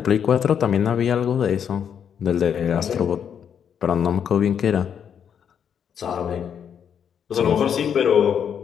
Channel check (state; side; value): quieter; right; 8.1 dB